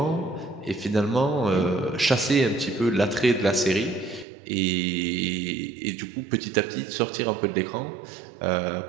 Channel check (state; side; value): drops out; left; at 4.2 s